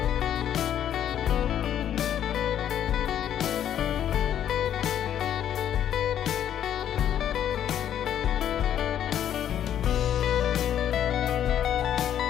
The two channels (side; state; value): right; quieter; 10.2 dB